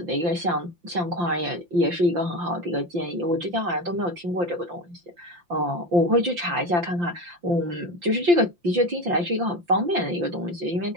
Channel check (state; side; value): late; left; 5.8 ms